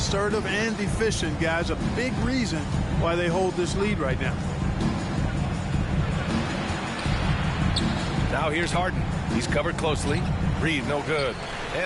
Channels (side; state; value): both; identical; correlation 1.00